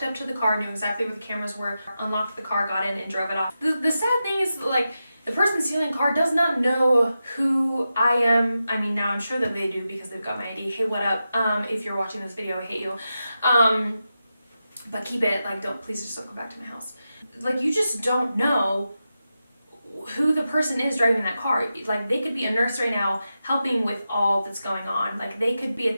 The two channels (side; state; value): both; inverted; correlation -0.90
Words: up to the car, knew exactly where the cameras were, unlocked the car, got in, and drove it off. The sad thing is, like, the person stealing the car does not know who I am. I mean, now I'm sure that they do because they've got my ID. Hey, what up? If you're watching this video, I hate you. But keep it, like, please just don't go back to my house. Like, you just don't know who the person is driving that car. Like, they could be a nurse right now helping with all that's going on. Like, they could be a